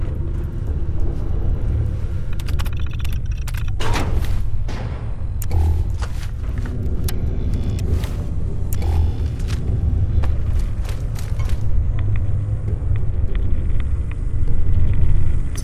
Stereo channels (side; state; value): both; identical; correlation 1.00